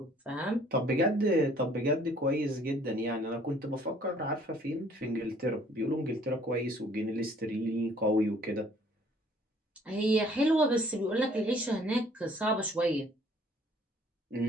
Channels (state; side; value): normal; both; correlation 0.58